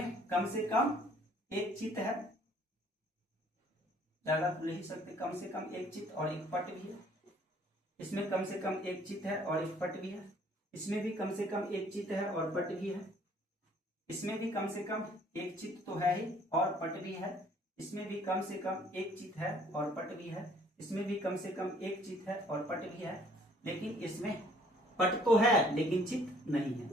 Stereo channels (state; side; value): normal; both; correlation 0.59